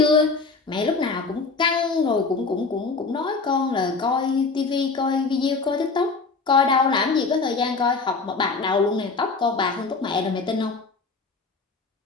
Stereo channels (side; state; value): right; quieter; 4.2 dB